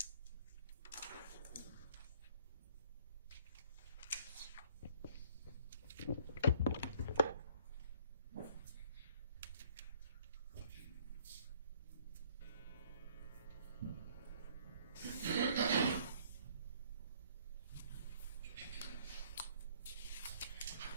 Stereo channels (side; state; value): both; inverted; correlation -0.58